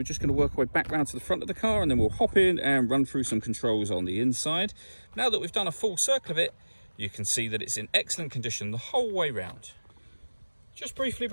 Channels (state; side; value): inverted; both; correlation -1.00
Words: just going to work our way back round to the front of the car, and then we'll hop in and run through some controls on the inside. Now that we've done a full circle of it, you can see that it's in excellent condition the whole way round. Just briefly